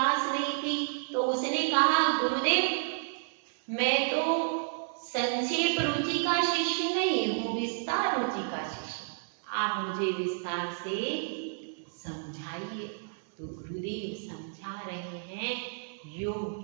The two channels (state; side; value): silent; left; 57 dB below the other